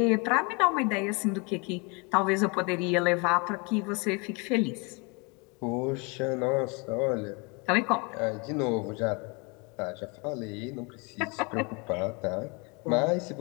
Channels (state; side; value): quieter; right; 30.6 dB